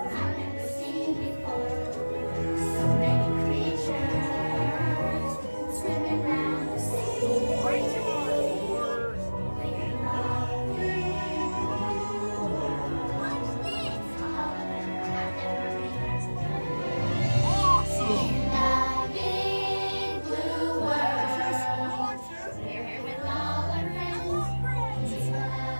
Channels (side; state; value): both; inverted; correlation -1.00